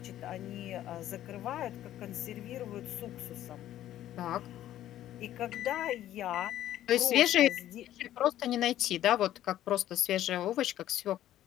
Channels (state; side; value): quieter; right; 12.7 dB